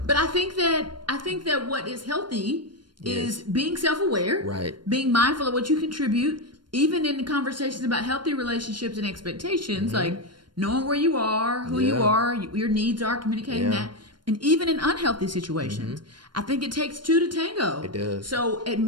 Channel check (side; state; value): left; late; 0.72 ms